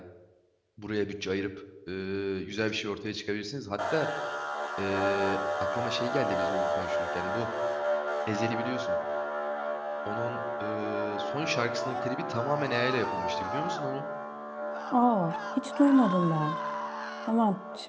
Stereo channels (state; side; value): identical; both; correlation 1.00